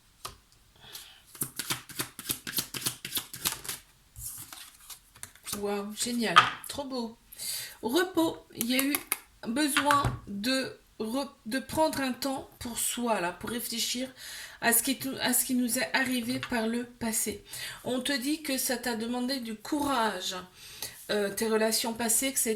Waouh, génial, trop beau. Repos, il y a eu besoin de prendre un temps pour soi, là, pour réfléchir à ce qui nous est arrivé par le passé. On te dit que ça t'a demandé du courage, tes relations passées, que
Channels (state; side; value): identical; both; correlation 1.00